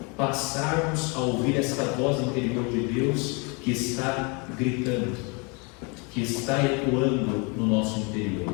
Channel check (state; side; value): quieter; right; 31.7 dB